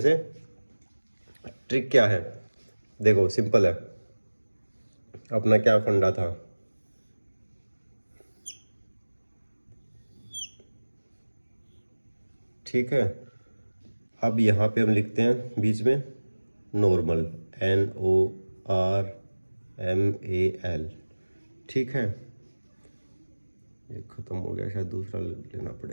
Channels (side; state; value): both; inverted; correlation -1.00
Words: ट्रिक क्या है, देखो सिंपल है। अपना क्या फंडा था, ठीक है। अब यहाँ पे हम लिखते हैं बीच में नॉर्मल, NORMAL, ठीक है। ये ख़त्म हो गया, शायद दूसरा लेना